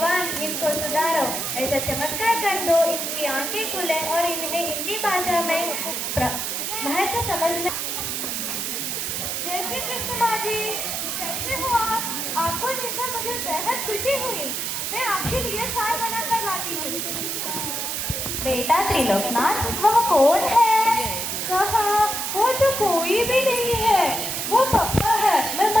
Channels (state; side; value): noise; right; hiss, 2 dB below the sound